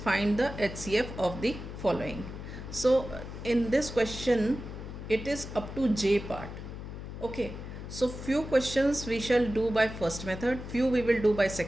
the HCF of the following. So, in this question, it is up to J part. Okay. So, few questions we shall do by first method, few we will do by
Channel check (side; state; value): left; noise; hum, 10 dB below the sound